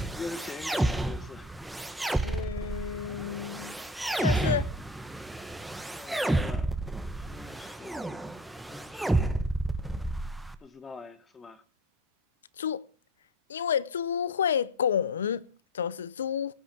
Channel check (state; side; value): normal; both; correlation 0.31